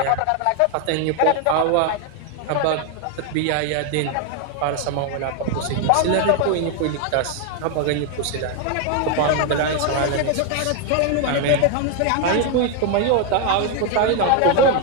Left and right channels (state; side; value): different; both; correlation 0.01